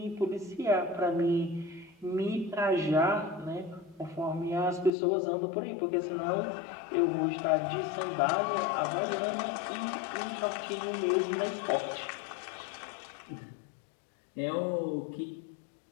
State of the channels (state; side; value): drops out; right; at 4.9 s